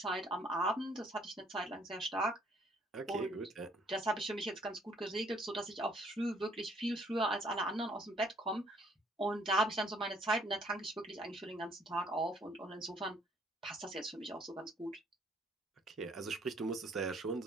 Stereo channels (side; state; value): both; normal; correlation 0.64